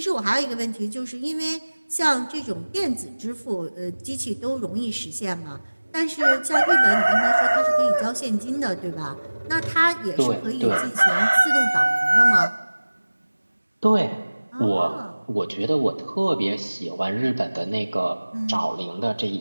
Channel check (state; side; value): inverted; both; correlation -1.00